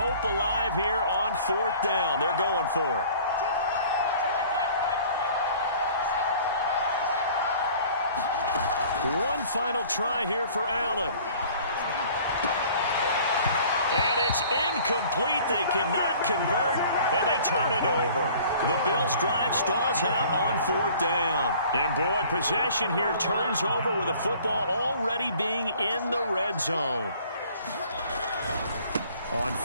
alive here on 4th down. They're going for it. One final try here for Allen. And it's incomplete. They cannot convert, and they turn it over. The Bills' drive stalls out on 4th down. And, boy, possession here turns over with the football already being in the red zone. On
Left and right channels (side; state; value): both; inverted; correlation -0.51